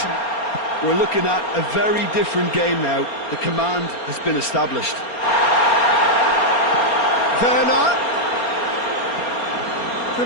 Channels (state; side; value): late; right; 4.3 ms